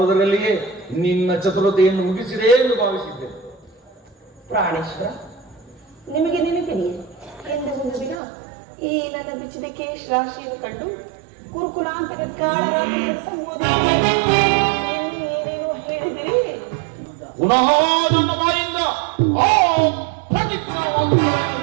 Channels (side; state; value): left; drops out; at 8.2 s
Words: ನಿನ್ನ ಚತುರತೆಯನ್ನು ಮುಗಿಸಿದೆ ಎಂದು ಭಾವಿಸಿದ್ದೆ. ಪ್ರಾಣೇಶ್ವರ, ನಿಮಗೆ ನೆನಪಿದೆಯೇ ಎಂದು ಒಂದು ದಿನ ಈ ನನ್ನ ಬಿಚ್ಚಿದ ಕೇಶ್ ರಾಶಿಯನ್ನು ಕಂಡು ಕುರುಕುಲಾಂತರ ಏನೇನೋ ಹೇಳಿದಿರಿ. ಪುನಃ ನನ್ನ ಬಾಯಿಂದ